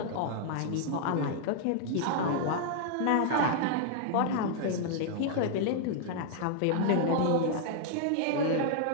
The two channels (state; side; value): different; both; correlation -0.01